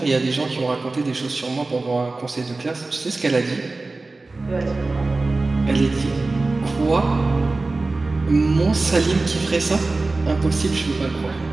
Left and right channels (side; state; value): left; quieter; 3.4 dB